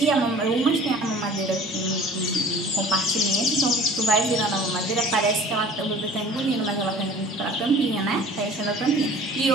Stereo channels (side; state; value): both; normal; correlation 0.46